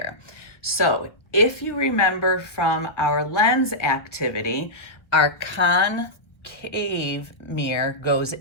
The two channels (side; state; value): right; late; 1.6 ms